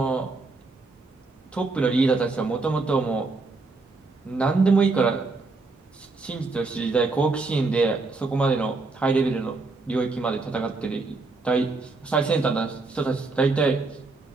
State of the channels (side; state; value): left; quieter; 3.7 dB